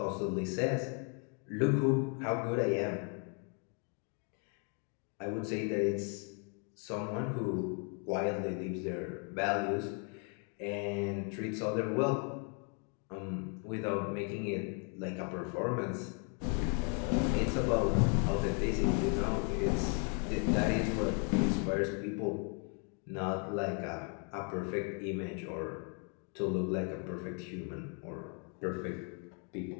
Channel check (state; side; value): quieter; right; 39.0 dB